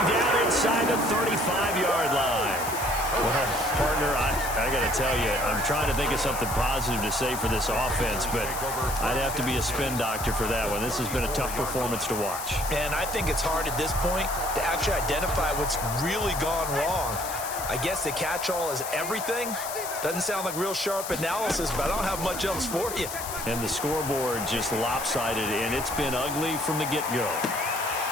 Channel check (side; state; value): left; noise; hiss, 8 dB below the sound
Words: down inside the 35-yard line. Well, partner, I got to tell you, I'm trying to think of something positive to say for this offense, but I'd have to be a spin doctor for that one. This has been a tough performance to watch. And I think it's hard at this point to actually identify what's really gone wrong. I guess the catch-all is everything. Doesn't sound like real sharp analysis, but I don't have much else for you. And the scoreboard just lopsided, and it's been ugly from the get-go.